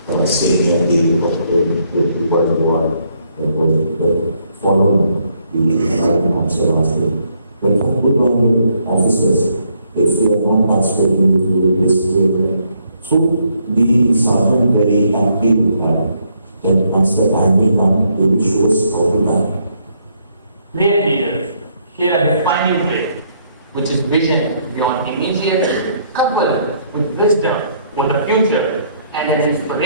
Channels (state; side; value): inverted; both; correlation -0.71